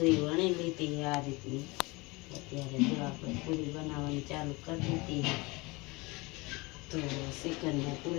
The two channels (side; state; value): right; quieter; 24.7 dB